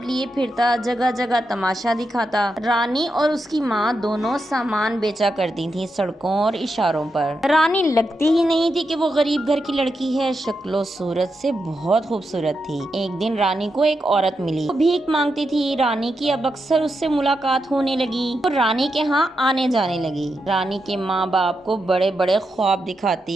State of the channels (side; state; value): both; normal; correlation 0.86